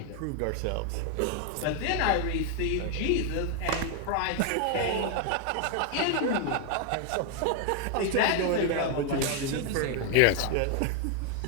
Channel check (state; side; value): different; both; correlation 0.01